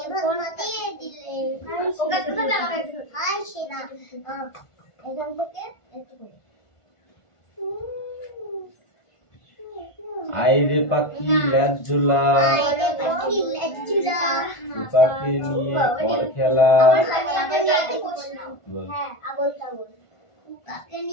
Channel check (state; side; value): late; right; 1.5 ms